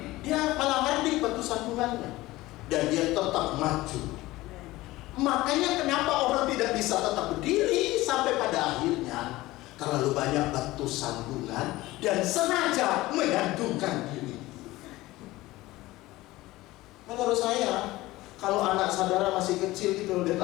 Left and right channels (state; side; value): quieter; right; 18.4 dB